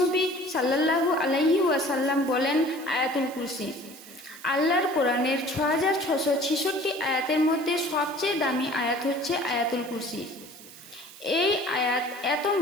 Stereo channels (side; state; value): right; noise; hiss, 18 dB below the sound